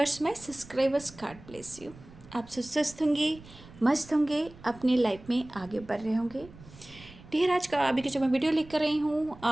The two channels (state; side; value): noise; right; rumble, 20 dB below the sound